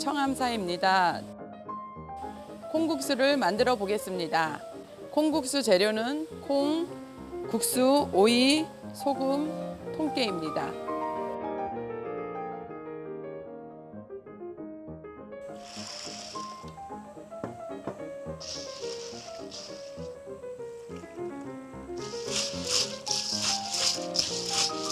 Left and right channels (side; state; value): both; identical; correlation 1.00